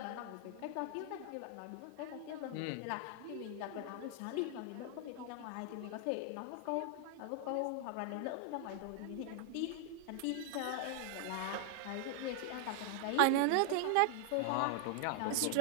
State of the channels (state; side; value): different; both; correlation 0.00